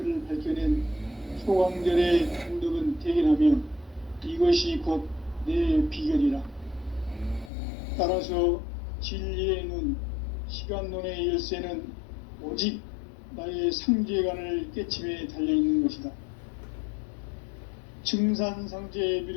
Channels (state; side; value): drops out; right; at 7.5 s